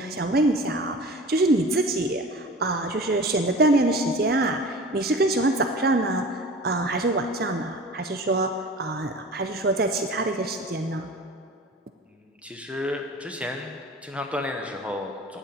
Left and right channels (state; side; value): normal; both; correlation 0.39